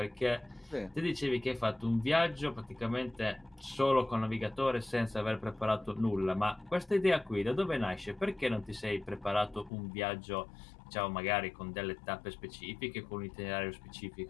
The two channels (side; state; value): right; drops out; at 9.7 s